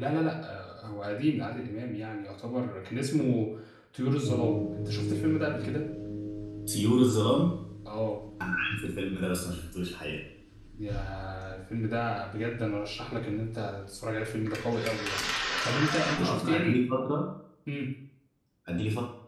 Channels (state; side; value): identical; both; correlation 1.00